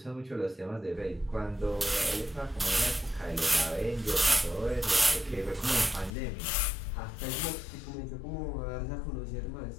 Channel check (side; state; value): right; drops out; at 6.1 s